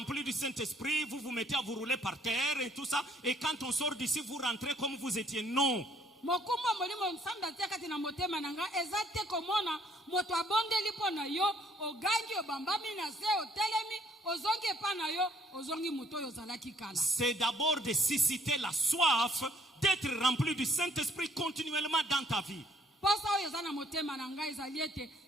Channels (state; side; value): normal; both; correlation 0.63